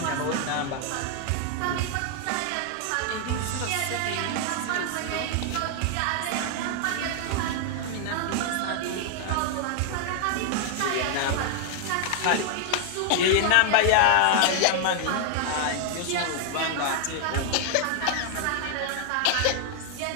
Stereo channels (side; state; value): both; different; correlation 0.00